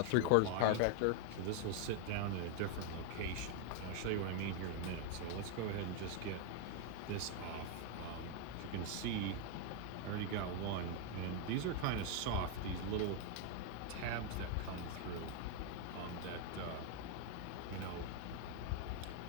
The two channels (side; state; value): both; different; correlation 0.01